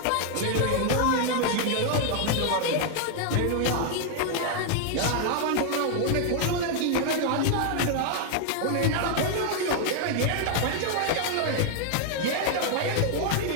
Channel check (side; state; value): both; different; correlation 0.00